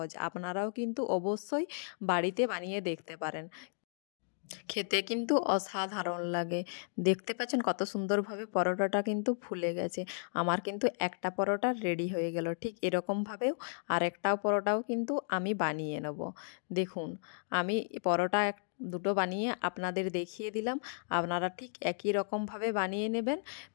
আপনারাও কিন্তু অবশ্যই বাড়িতে বানিয়ে দেখতে পারেন। খেতে কিন্তু অসাধারণ লাগে। দেখতে পাচ্ছেন কত সুন্দরভাবে পরোটাটা কিন্তু ফুলে গেছে। আমার কিন্তু একটা পরোটা রেডি হয়ে গেল। ঠিক এরকমভাবেও আরেকটাও পরোটাও কিন্তু আমি বানিয়ে নেব। দেখুন আমি পরোটা দুটো বানিয়ে আপনাদের দেখিয়ে দিলাম। আপনারা ঠিক একই রকমভাবে বানিয়ে নেবেন।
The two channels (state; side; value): silent; right; digital silence